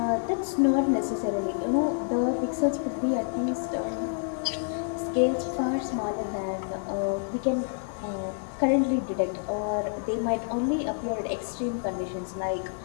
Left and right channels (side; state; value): right; silent; 59 dB below the other